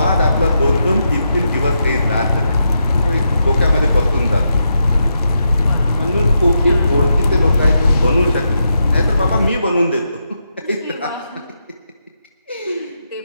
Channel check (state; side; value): inverted; both; correlation -0.84